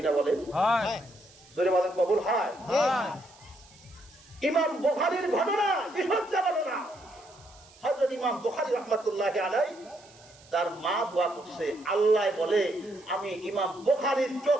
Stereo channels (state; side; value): noise; right; hiss, 25 dB below the sound